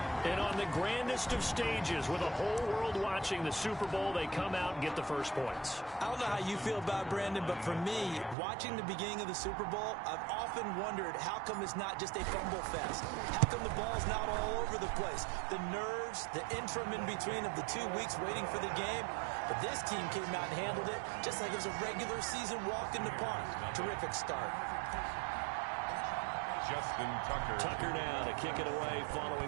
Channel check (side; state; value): left; drops out; at 8.3 s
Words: And on the grandest of stages, with the whole world watching the Super Bowl, they come out and get the first points. I don't know how you feel about Brandon, but for me, watching the beginning of the Super Bowl, I've often wondered how come it's not just a fumble fest? How come the ball's not all over the place? The nerves, the interim in between of the 2 weeks waiting for the game. But this team came out and handled it just like it was a regular season walk in the park. Terrific start. Justin Tucker. Tucker now to kick it away